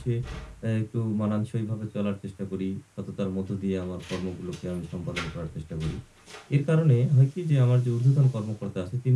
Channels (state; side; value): identical; both; correlation 1.00